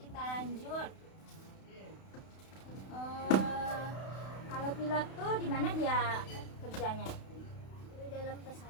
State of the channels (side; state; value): right; late; 32 ms